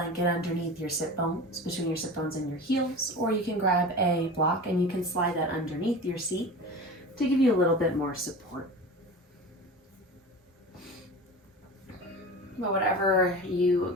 underneath your sit bones, between your sit bones and your heels, or you can grab a block and you can slide that underneath your seat to give you a little bit more support. But whatever you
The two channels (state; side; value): normal; both; correlation 0.33